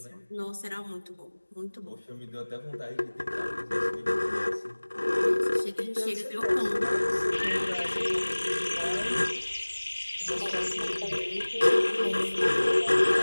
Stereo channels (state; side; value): inverted; both; correlation -1.00